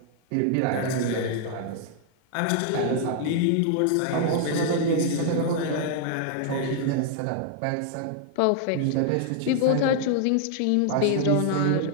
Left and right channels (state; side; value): different; both; correlation -0.01